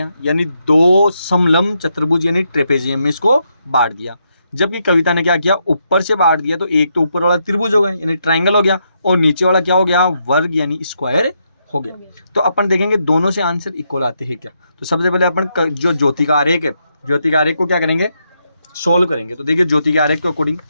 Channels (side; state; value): both; inverted; correlation -0.80